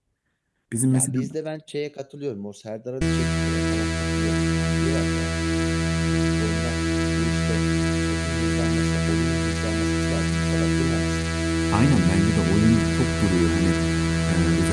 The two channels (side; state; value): both; identical; correlation 1.00